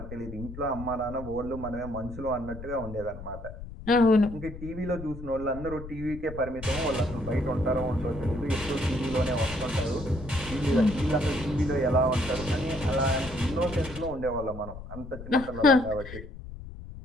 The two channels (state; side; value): noise; left; rumble, 12 dB below the sound